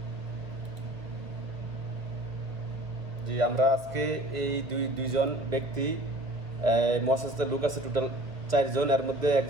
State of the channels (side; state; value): left; late; 1.5 ms